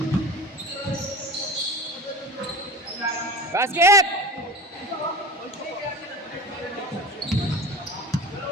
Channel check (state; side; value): normal; both; correlation 0.31